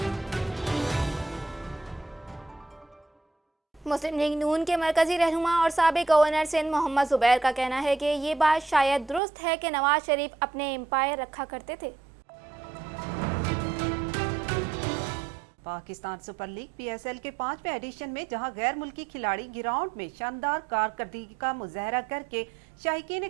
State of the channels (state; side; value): drops out; left; at 9.2 s